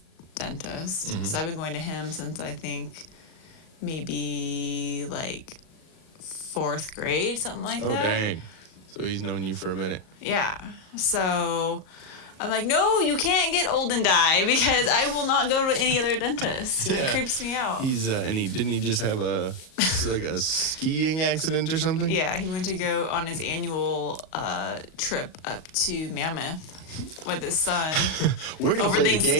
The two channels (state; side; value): late; right; 38 ms